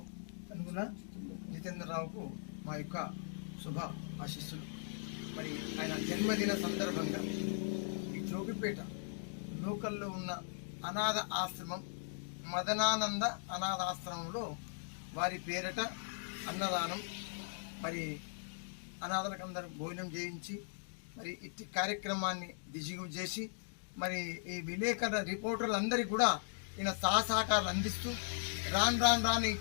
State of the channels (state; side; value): silent; right; digital silence